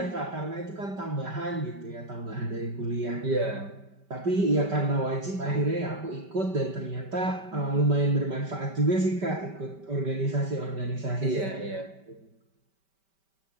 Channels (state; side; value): late; left; 5.1 ms